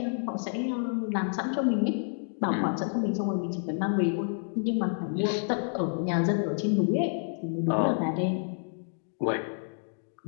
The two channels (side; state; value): right; silent; digital silence